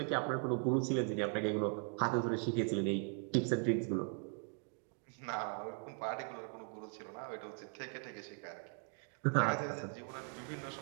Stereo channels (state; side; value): quieter; left; 38.6 dB